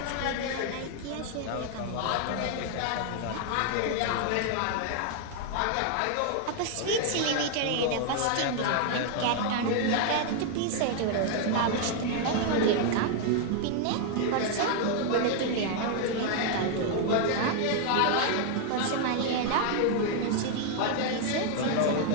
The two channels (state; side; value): different; both; correlation 0.00